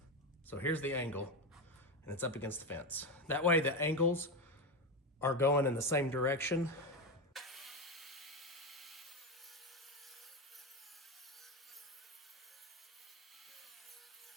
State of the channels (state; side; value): normal; both; correlation 0.14